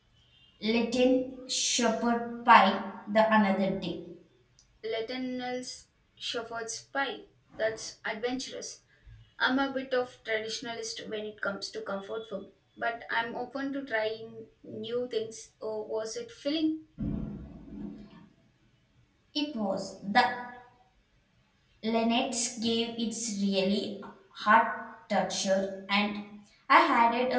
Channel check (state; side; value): identical; both; correlation 1.00